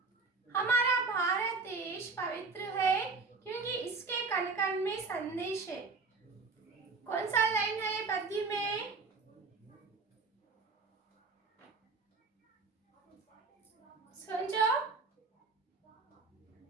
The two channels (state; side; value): quieter; left; 4.3 dB